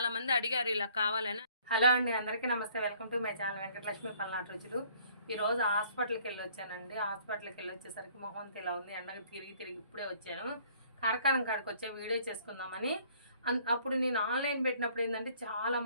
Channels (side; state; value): both; inverted; correlation -0.58